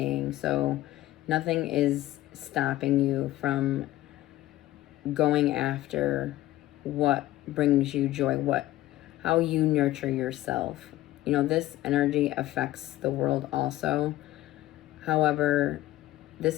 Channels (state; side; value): quieter; right; 15.5 dB